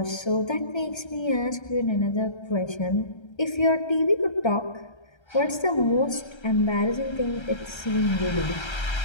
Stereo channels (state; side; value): late; right; 1.3 ms